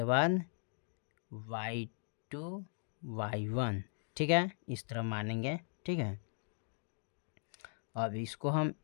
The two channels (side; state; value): right; silent; digital silence